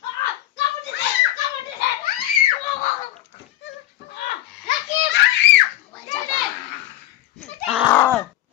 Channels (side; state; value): right; quieter; 14.5 dB